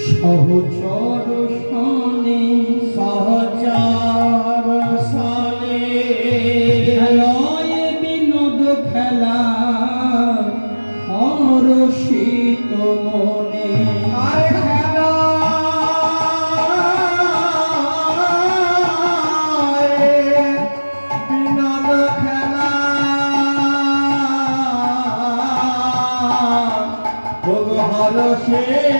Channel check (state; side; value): inverted; both; correlation -1.00